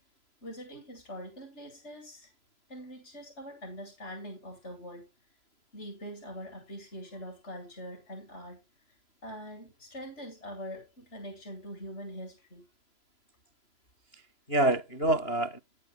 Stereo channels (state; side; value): late; right; 3.0 ms